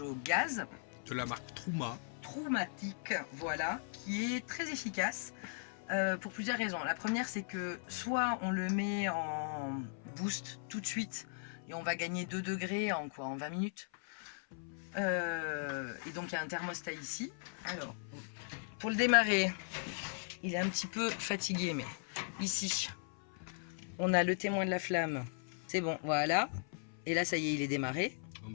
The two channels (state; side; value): silent; right; 52 dB below the other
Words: gaz. De la marque Trouma. Troumatique, voilà, qui est très efficace. Pour plusieurs raisons. La première, c'est que soit on le met en boost tout de suite et on va gagner 2 degrés en 20 minutes. Et donc il y a un thermostat ici. Alors, pour le démarrer, il est un petit peu fatigué, mais ici, on a le témoin de la flamme. C'est bon, voilà. Et là, ça y est, il est démarré. En